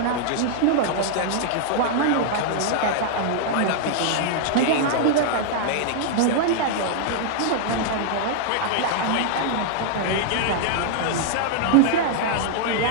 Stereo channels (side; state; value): both; different; correlation -0.01